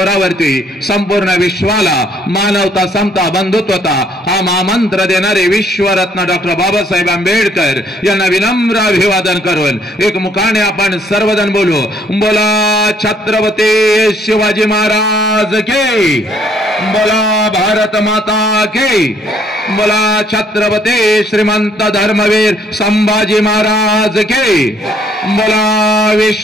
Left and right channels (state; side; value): normal; both; correlation 0.65